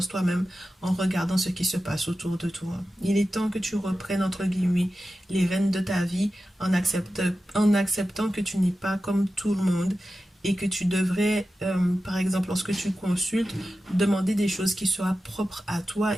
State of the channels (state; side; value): normal; both; correlation 0.93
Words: toi-même en regardant ce qui se passe autour de toi. Il est temps que tu reprennes, entre guillemets, les rênes de ta vie en acceptant que tu n'es pas comme tout le monde et que tu devrais, par exemple, lorsque tu consultes, demander des choses qui soient propres à toi